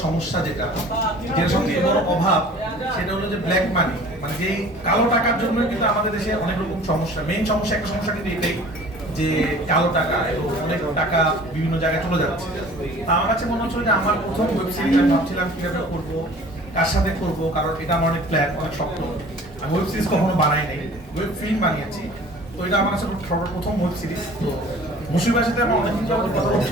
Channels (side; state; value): both; normal; correlation 0.47